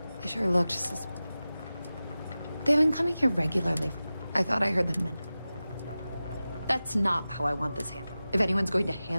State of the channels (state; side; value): inverted; both; correlation -0.95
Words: They sure look just as... They've been coming here regularly. I thought I heard them men. That's not how I want this handled. If anyone's going to